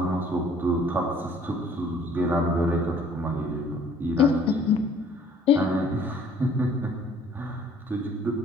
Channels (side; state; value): both; normal; correlation 0.56